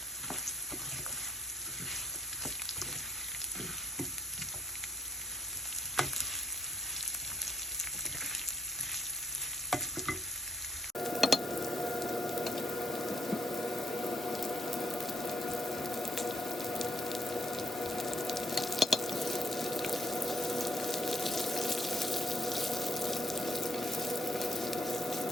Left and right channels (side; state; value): both; normal; correlation 0.74